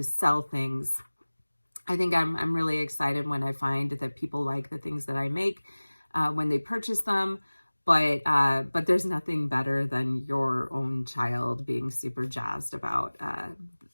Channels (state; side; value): inverted; both; correlation -1.00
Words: sell things. I think I'm really excited when I find that people like the things that I make when they purchase them. But there's nothing better than your own child being super jazzed about